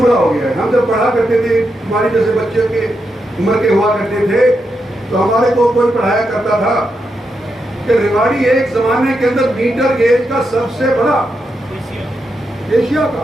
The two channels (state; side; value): normal; both; correlation 0.84